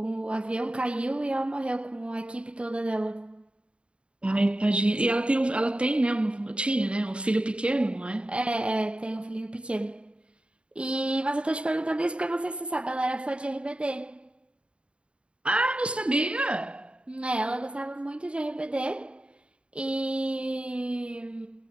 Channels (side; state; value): left; late; 0.057 ms